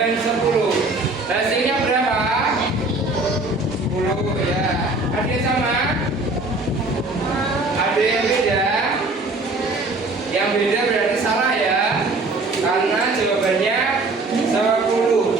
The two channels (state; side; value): quieter; left; 3.1 dB